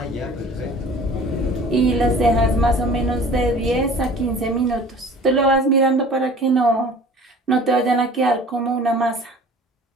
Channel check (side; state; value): both; normal; correlation 0.45